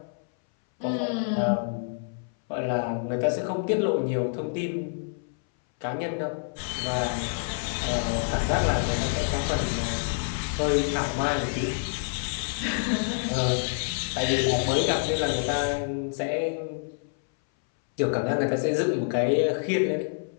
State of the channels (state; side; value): silent; right; 60 dB below the other